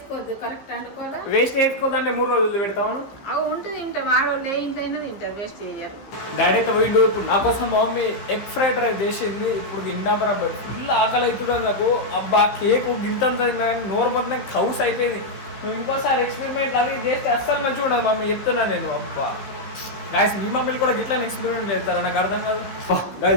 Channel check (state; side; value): late; right; 15 ms